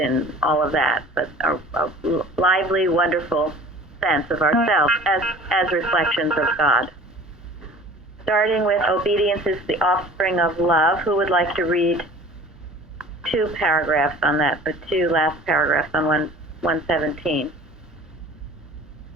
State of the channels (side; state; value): both; normal; correlation 0.45